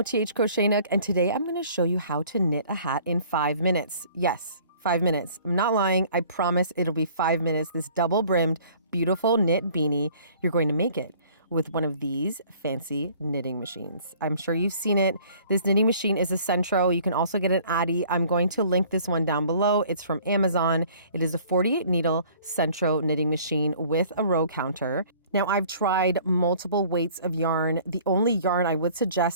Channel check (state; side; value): inverted; both; correlation -0.53